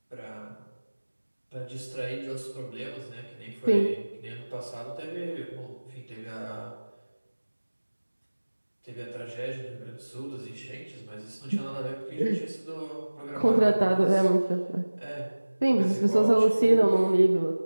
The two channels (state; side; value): inverted; both; correlation -1.00